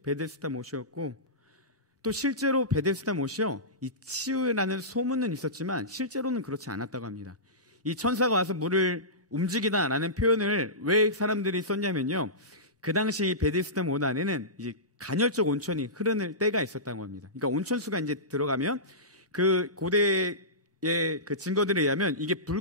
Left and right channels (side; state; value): both; normal; correlation -0.20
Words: 베데스다 못이었고, 또 실제로 베데스다 못이요, 이 치유라는 소문은 있었지만 실제로는 그렇지 않았다고 합니다. 이 천사가 와서 물을 움직이다라는 표현을 왜 사람들이 썼냐면요, 그 당시 베데스다 못 안에는 이제 간헐적 온천이 흐르는 때가 있었다고 합니다. 그러니까 온천수가 이제 들어가면 그 고대의 그 증거들에 의하면 이게